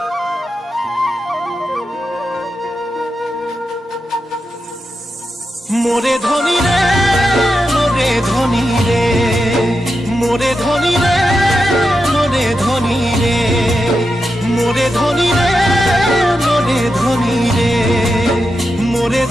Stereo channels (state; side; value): normal; both; correlation 0.88